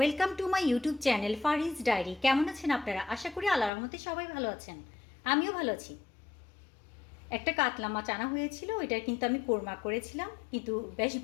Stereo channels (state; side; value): drops out; right; at 3.7 s